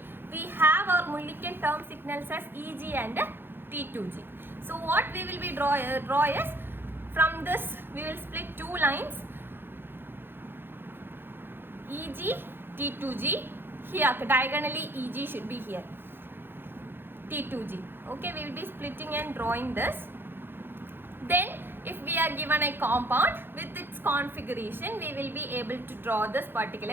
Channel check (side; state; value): left; late; 0.10 ms